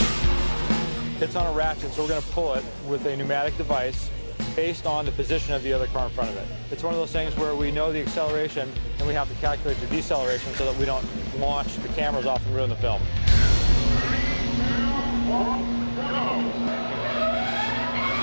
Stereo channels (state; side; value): inverted; both; correlation -1.00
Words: It's on a ratchet, so we're going to pull it with a pneumatic device based on the position of the other car in front of it. It's one of those things where we know the acceleration and we have to calculate the deceleration so that we don't launch the cameras off and ruin the film.